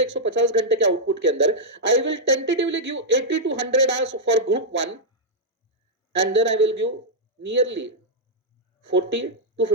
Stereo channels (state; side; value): normal; both; correlation -0.06